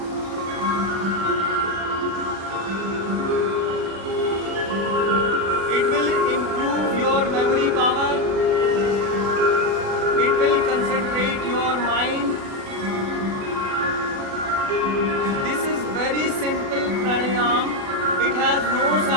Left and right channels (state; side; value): late; left; 36 ms